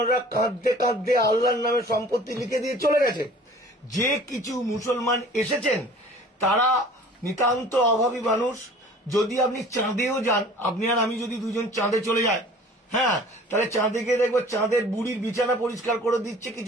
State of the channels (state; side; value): normal; both; correlation 0.47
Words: কাঁদতে কাঁদতে আল্লাহর নামে সম্পত্তি লিখে দিয়ে চলে গেছে। যে কিছু মুসলমান এসেছেন তারা নিতান্ত অভাবী মানুষ। যদি আপনি চাঁদেও যান, আপনি আর আমি যদি দুজন চাঁদে চলে যাই, হ্যাঁ, তাহলে চাঁদে গিয়ে দেখবো চাঁদের বুড়ির বিছানা পরিষ্কার করে দিচ্ছে